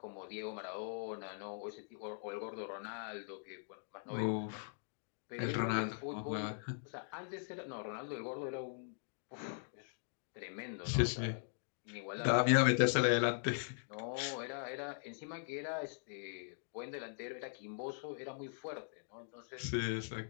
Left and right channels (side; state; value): right; silent; digital silence